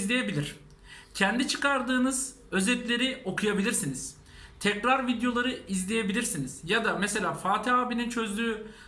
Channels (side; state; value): both; identical; correlation 1.00